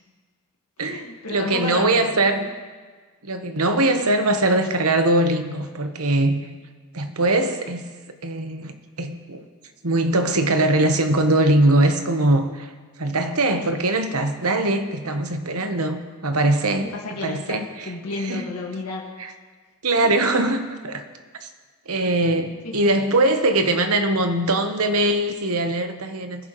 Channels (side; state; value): both; normal; correlation 0.07